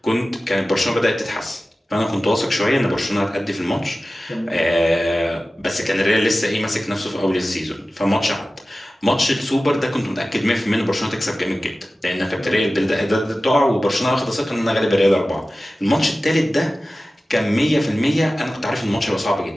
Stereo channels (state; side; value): normal; both; correlation 0.96